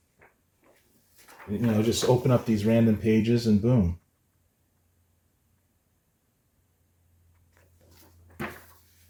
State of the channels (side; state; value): both; identical; correlation 1.00